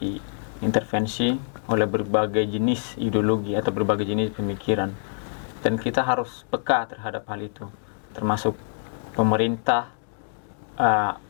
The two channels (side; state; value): right; silent; digital silence